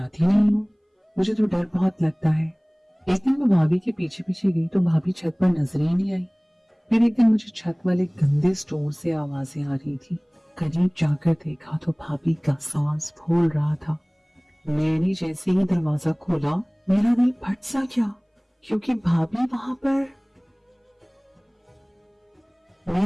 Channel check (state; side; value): identical; both; correlation 1.00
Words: नहीं हूँ, मुझे तो डर बहुत लगता है। एक दिन मैं भाभी के पीछे पीछे गई तो भाभी छत पर नजर ही नहीं आई। फिर एक दिन मुझे छत वाले गंदे स्टोर से आवाजें आ रही थी। करीब जाकर देखा तो भाभी का सांस फूल रहा था। मैंने जैसे ही दरवाजा खोला मेरा दिल फट सा गया, क्योंकि भाभी वहां पर।